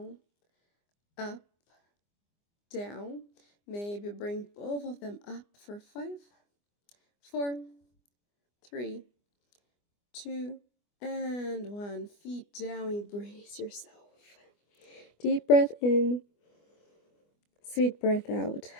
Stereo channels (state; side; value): late; right; 24 ms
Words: up, down. Maybe bring both of them up for 5, 4, 3, 2, and 1. Feet down, embrace yourself. Deep breath in, sweet breath out.